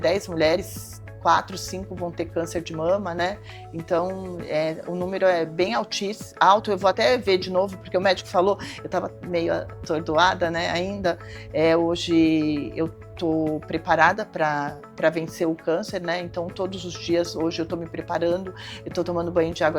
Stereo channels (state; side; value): identical; both; correlation 1.00